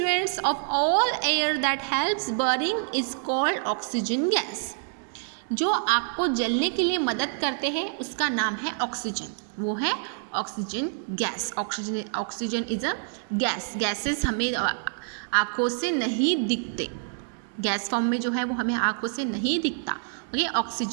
of all air that helps burning is called oxygen gas. जो आग को जलने के लिए मदद करते हैं उसका नाम है ऑक्सीजन, वो है oxygen gas. Oxygen is a gas. Gases हमें आँखों से नहीं दिखते, गैस फॉर्म में जो है वो हमें आँखों से नहीं दिखता। ओके,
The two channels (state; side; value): silent; left; 60 dB below the other